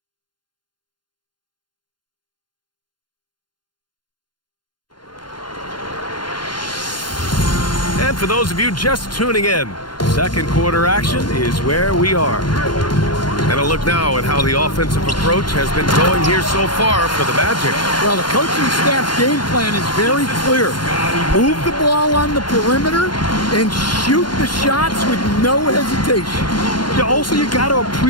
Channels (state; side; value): late; right; 0.71 ms